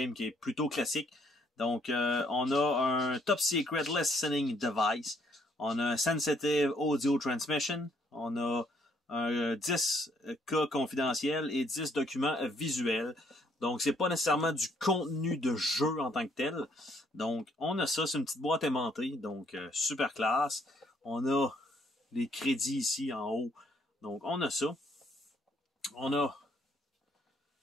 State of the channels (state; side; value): normal; both; correlation 0.68